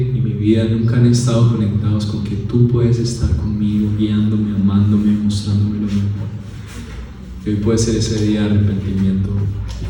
y mi vida nunca han estado conectados con que tú puedes estar conmigo, guiándome, amándome, mostrándome lo mejor. Y hoy puede ser ese día de arrepentimiento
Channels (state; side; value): identical; both; correlation 1.00